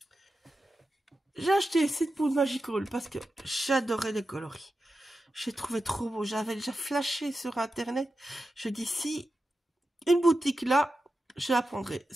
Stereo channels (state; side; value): normal; both; correlation 0.91